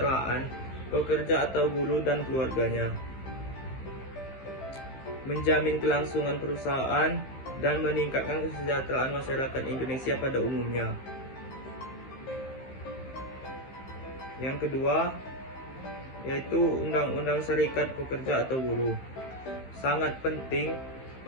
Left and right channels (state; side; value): late; right; 15 ms